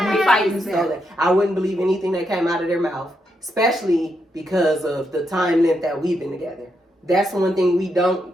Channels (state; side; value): normal; both; correlation 0.81